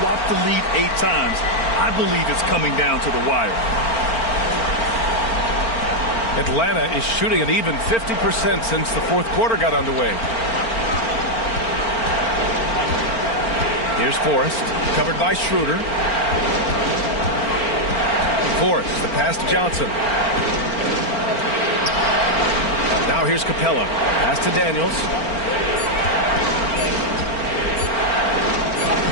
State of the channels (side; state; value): right; late; 4.4 ms